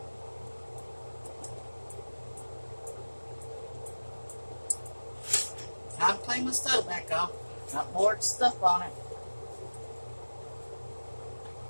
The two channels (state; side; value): inverted; both; correlation -1.00